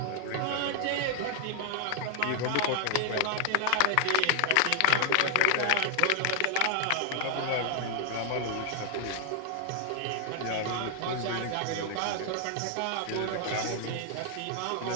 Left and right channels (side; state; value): both; different; correlation 0.00